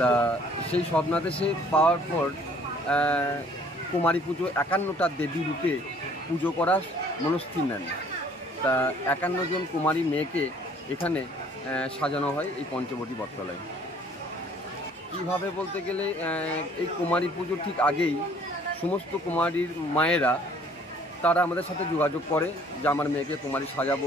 সেই স্বপ্নাদেশে পাওয়ার পর কুমারী পুজো 51টা দেবী রূপে পুজো করার মনস্থির নেন। তা 51 জন কুমারী মেয়েকে এখানে সাজানো হয় এই পঞ্চবটী বটতলায়। কীভাবে বলতে গেলে এই কুমারী পুজোর ঠিক আগেই সমস্ত কুমারীর মায়েরা তারা আমাদের সাথে যোগাযোগ করে যে আমার মেয়েকে কুমারী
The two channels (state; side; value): normal; both; correlation 0.57